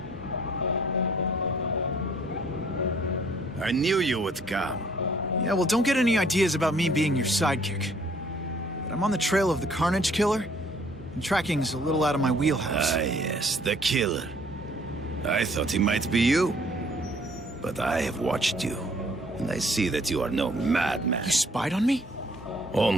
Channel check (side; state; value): both; normal; correlation 0.60